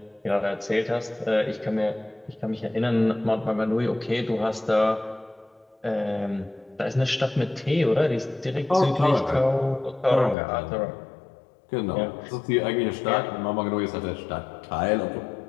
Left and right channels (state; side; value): drops out; right; at 10.4 s